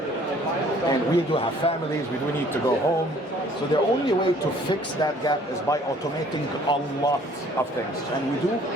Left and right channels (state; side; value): normal; both; correlation 0.57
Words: and we do have families, we do need to go home. So the only way to fix that gap is by automating a lot of things. And we do